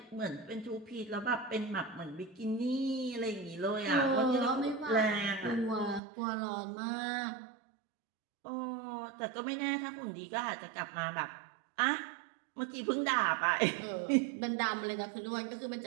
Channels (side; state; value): left; drops out; at 6.0 s